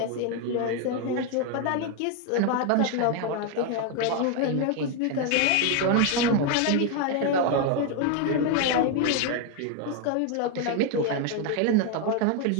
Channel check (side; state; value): both; different; correlation 0.01